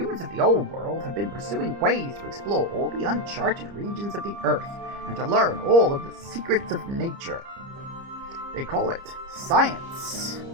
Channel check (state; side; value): late; left; 30 ms